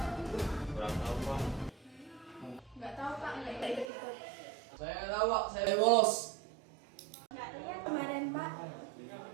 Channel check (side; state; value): left; drops out; at 3.9 s